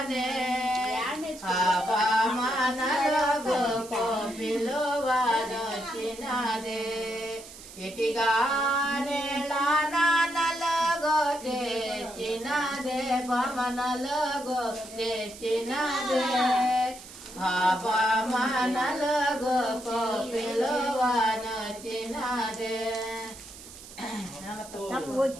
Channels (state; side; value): noise; right; hiss, 17 dB below the sound